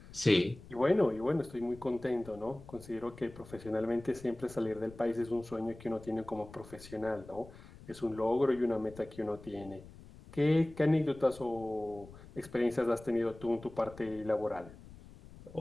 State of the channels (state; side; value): noise; left; rumble, 19 dB below the sound